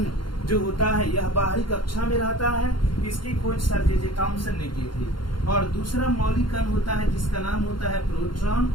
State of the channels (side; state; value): right; late; 0.72 ms